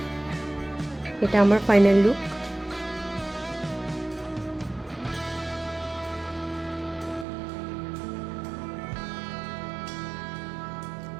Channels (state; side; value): drops out; left; at 7.2 s